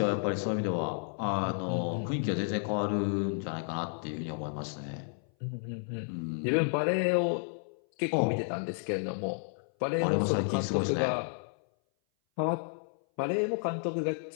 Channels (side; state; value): right; silent; 57 dB below the other